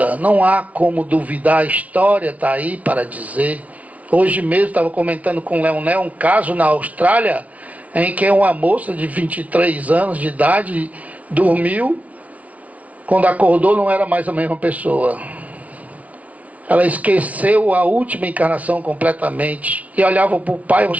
não há como duvidar, a história está aí para dizer. Hoje mesmo estava comentando com o Leonel um caso na Austrália, em que uma moça de 23 anos de idade dormiu, quando acordou não era mais a mesma pessoa. Ela esqueceu a última encarnação completamente. E olhava para o pai,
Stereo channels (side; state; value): left; late; 0.068 ms